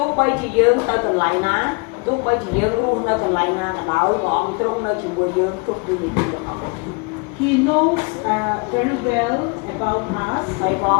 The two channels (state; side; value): quieter; right; 31.2 dB